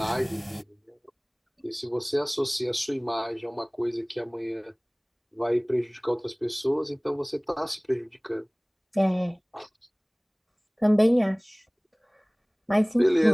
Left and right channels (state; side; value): identical; both; correlation 1.00